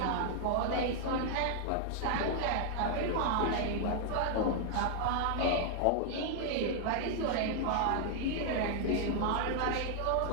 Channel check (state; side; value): different; both; correlation 0.00